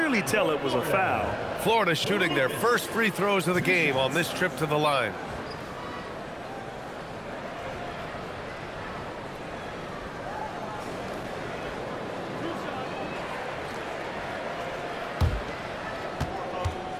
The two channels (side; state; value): both; identical; correlation 1.00